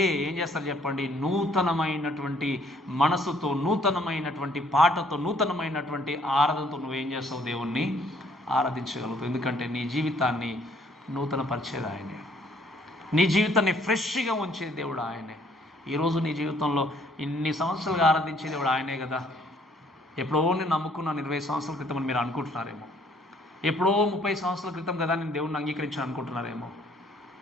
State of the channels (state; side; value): normal; both; correlation 0.63